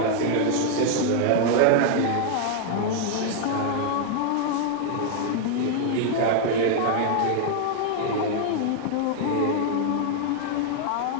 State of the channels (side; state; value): both; different; correlation 0.00